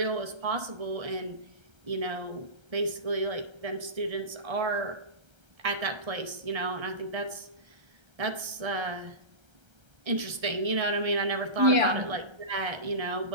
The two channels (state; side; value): late; left; 1.3 ms